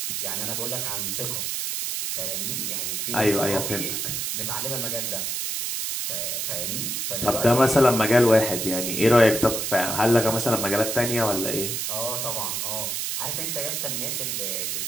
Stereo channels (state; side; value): noise; right; hiss, 2 dB below the sound